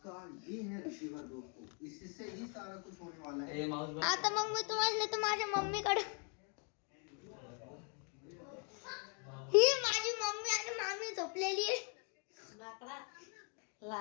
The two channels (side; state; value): right; quieter; 39.5 dB